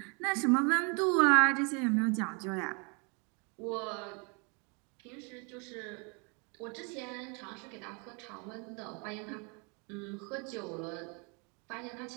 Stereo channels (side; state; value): left; quieter; 33.9 dB